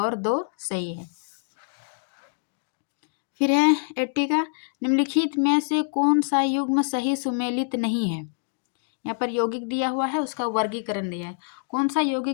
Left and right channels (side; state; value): right; silent; digital silence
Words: 2 सही है। फिर है 80 का, निम्नलिखित में से कौन सा युग्म सही सुमेलित नहीं है। यहाँ पर यौगिक दिया हुआ है, उसका वर्गीकरण दिया है। कौन सा